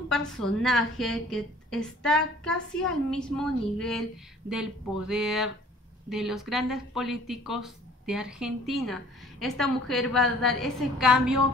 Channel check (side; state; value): both; normal; correlation 0.53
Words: personaje que está casi al mismo nivel del poder de los grandes políticos de Argentina. Esta mujer va a dar ese cambio,